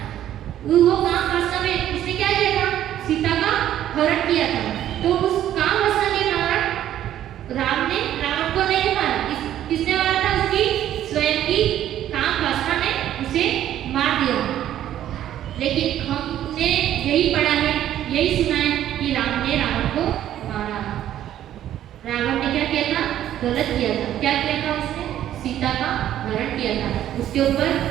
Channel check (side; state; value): left; quieter; 11.8 dB